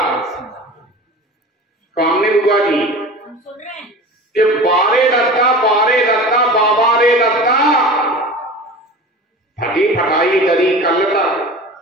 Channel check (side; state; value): both; normal; correlation 0.36